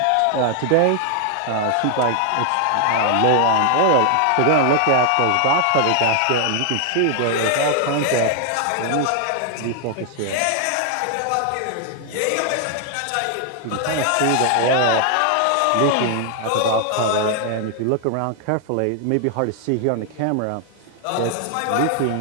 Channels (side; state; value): both; different; correlation 0.00